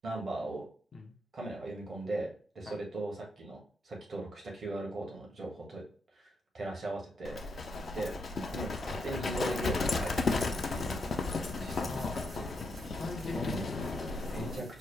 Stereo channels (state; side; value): normal; both; correlation 0.80